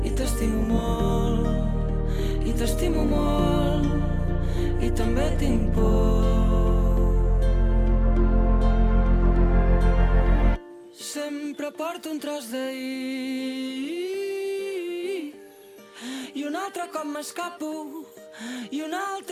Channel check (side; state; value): both; identical; correlation 1.00